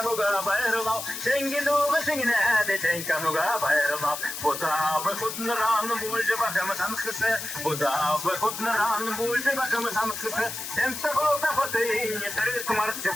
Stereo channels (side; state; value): left; noise; hiss, 7 dB below the sound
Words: bayırlav Tengi duğu şingine tenkanuga bayırlav Buzavı kudnuran bulcu bakımı tanıkısı Buzavı kudnuran Бульше бакам санкышы, темста голда хотын, не терес марчы